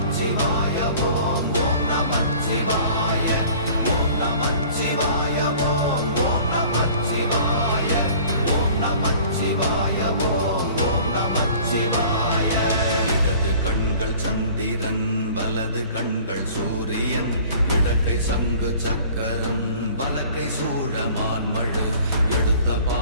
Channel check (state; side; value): inverted; both; correlation -0.48